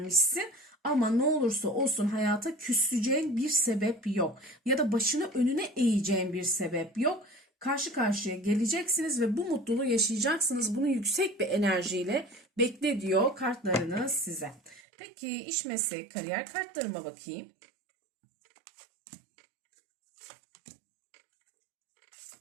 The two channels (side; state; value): left; drops out; at 14.8 s